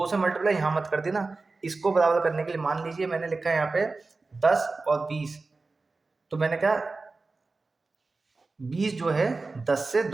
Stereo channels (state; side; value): quieter; left; 3.7 dB